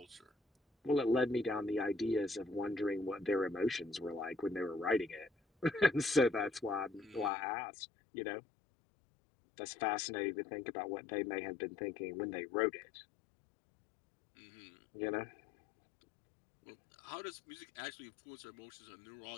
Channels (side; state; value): right; drops out; at 7.3 s